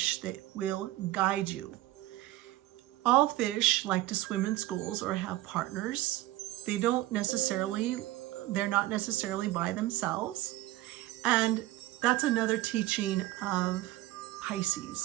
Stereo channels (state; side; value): quieter; left; 16.7 dB